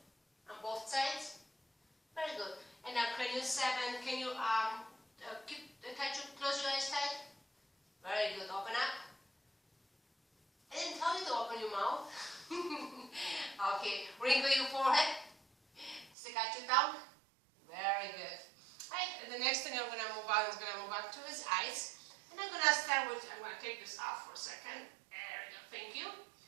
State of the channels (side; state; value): left; drops out; at 16.1 s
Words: both sides. Very good. And now cranial 7, can you close your eyes tight? Very good. Open up. I didn't tell you to open your mouth. Okay. Wrinkle your forehead. Stick out your tongue. Very good. Right. And the next thing I'm going to move on is going to move on to his eyes. And I'm going to start with, I'm going to take this off for a second. There we go. Thank you.